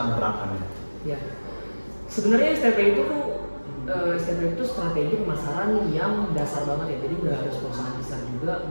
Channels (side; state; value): both; inverted; correlation -1.00